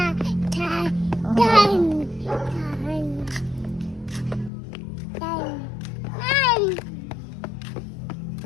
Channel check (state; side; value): drops out; right; at 4.5 s